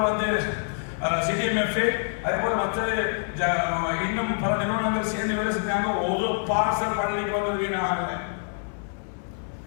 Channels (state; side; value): silent; right; 61 dB below the other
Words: வந்து சிடிஎம்எஃப், அதே போல மற்ற இன்னும் பல நிறுவனங்கள் சேர்ந்து வேலை செஞ்சாங்க. ஒரு பார்சல் பள்ளிக்கு வந்து வீணாக